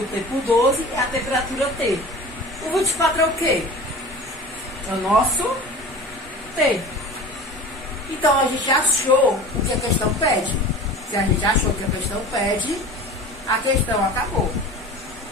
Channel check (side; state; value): both; normal; correlation 0.37